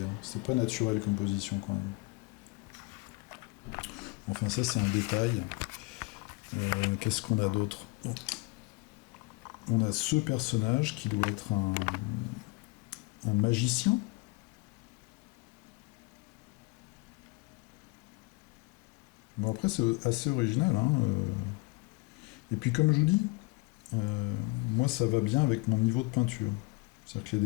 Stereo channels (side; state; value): right; quieter; 24.9 dB